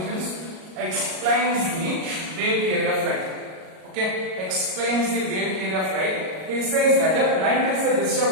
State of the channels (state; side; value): late; left; 37 ms